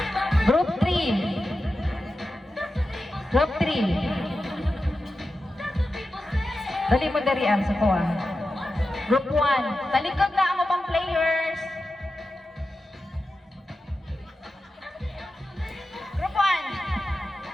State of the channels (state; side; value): normal; both; correlation 0.92